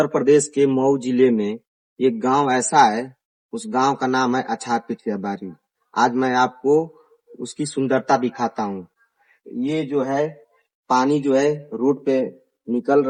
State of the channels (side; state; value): both; identical; correlation 1.00